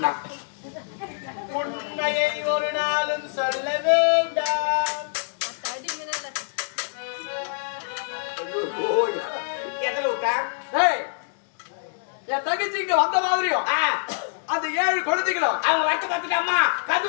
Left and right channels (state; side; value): silent; right; digital silence